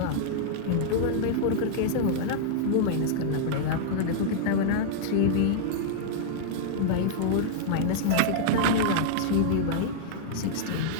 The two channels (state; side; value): different; both; correlation -0.01